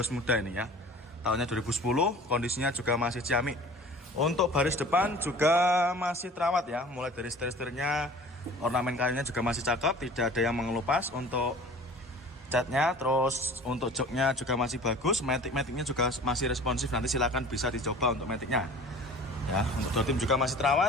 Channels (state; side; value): normal; both; correlation 0.44